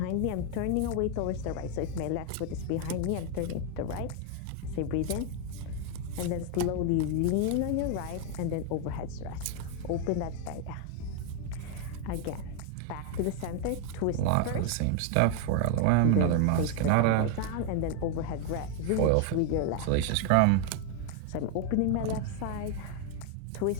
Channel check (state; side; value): different; both; correlation 0.01